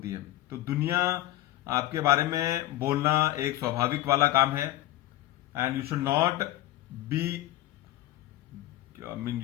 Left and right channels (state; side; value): quieter; right; 15.8 dB